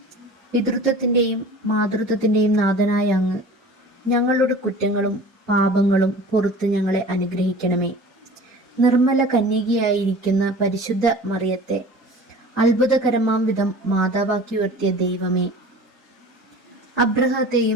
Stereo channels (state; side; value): normal; both; correlation 0.41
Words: പിതൃത്വത്തിൻ്റെയും മാതൃത്വത്തിൻ്റെയും നാഥനായ അങ്ങ് ഞങ്ങളുടെ കുറ്റങ്ങളും പാപങ്ങളും പുറത്ത് ഞങ്ങളെ അനുഗ്രഹിക്കണമേ. നിർമ്മല കന്യകയായിരിക്കുന്ന പരിശുദ്ധ മറിയത്തെ അത്ഭുതകരമാം വിധം മാതാവാക്കി ഉയർത്തിയ ദൈവമേ,